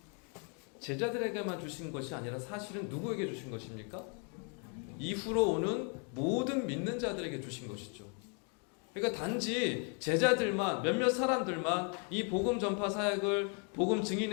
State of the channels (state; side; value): quieter; right; 39.0 dB